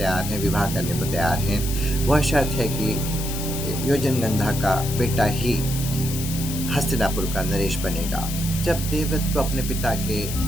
हैं, विवाह करने को तैयार हैं। वह शर्त है कि योजनगंधा का बेटा ही हस्तिनापुर का नरेश बनेगा। जब देवव्रत को अपने पिता के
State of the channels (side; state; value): left; noise; hiss, 7 dB below the sound